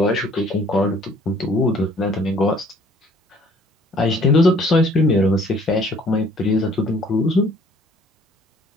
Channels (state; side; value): normal; both; correlation 0.57